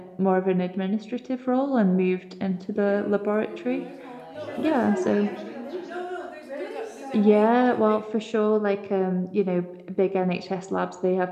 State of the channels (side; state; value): both; identical; correlation 1.00